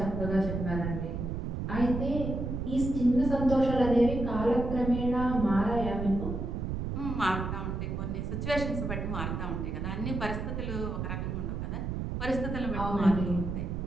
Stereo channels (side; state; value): right; noise; rumble, 3 dB below the sound